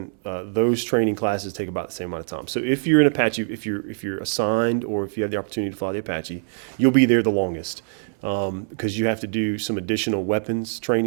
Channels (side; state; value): left; silent; 63 dB below the other